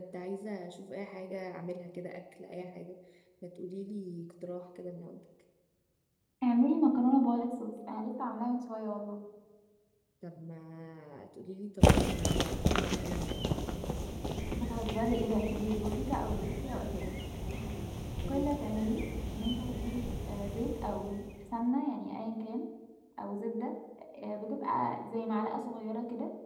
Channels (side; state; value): both; identical; correlation 1.00